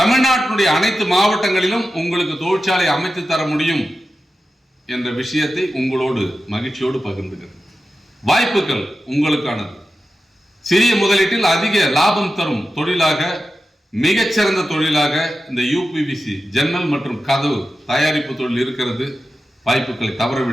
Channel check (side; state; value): both; normal; correlation 0.92